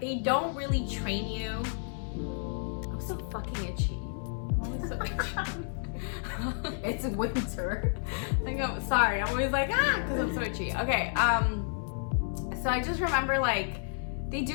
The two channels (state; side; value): silent; right; 57 dB below the other